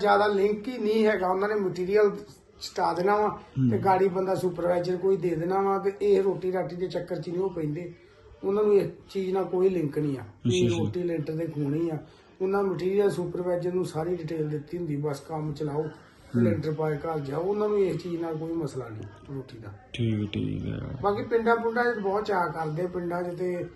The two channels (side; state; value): both; identical; correlation 1.00